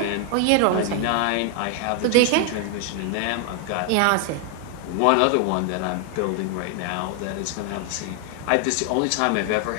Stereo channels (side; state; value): both; different; correlation 0.00